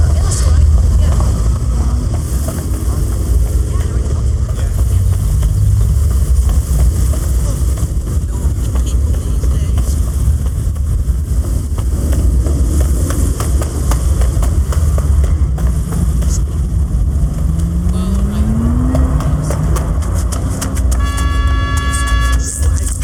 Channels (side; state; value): both; identical; correlation 1.00